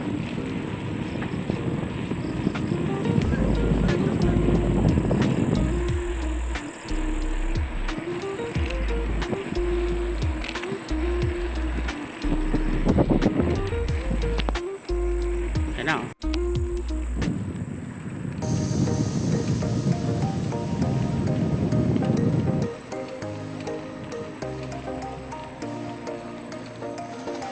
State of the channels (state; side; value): identical; both; correlation 1.00